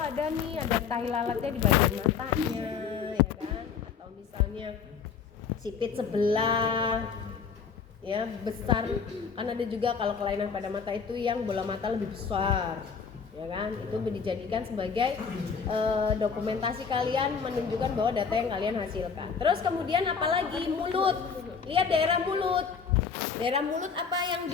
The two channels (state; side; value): quieter; right; 6.1 dB